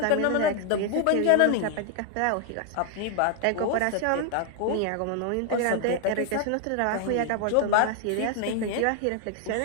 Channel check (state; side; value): different; both; correlation 0.00